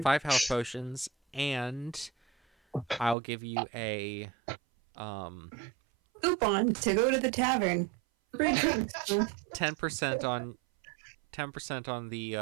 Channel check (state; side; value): drops out; left; at 3.2 s